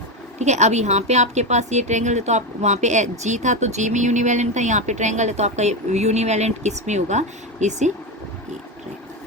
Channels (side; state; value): both; normal; correlation 0.14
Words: ठीक है। अब यहाँ पे आपके पास ये ट्रायंगल है तो आप वहाँ पे जी था तो जी में यूनिवैलेंट था, यहाँ पे ट्रायंगल है तो आपका यूनिवैलेंट किस में होगा, इस